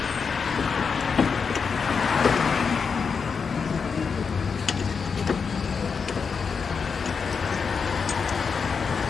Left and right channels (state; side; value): quieter; right; 5.7 dB